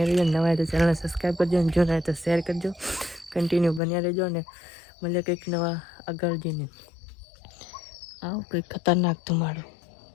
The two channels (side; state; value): right; drops out; at 3.8 s